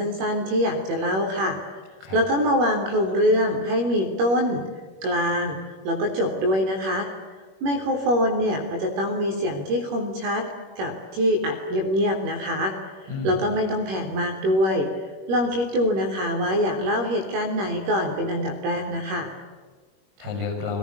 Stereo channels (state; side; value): late; left; 21 ms